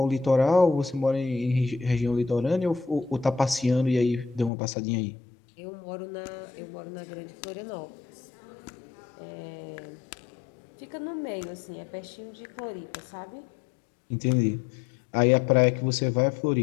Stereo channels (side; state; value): right; drops out; at 4.5 s